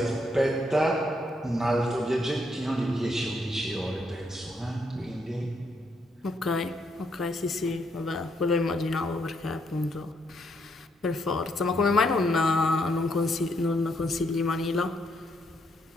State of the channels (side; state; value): both; normal; correlation 0.75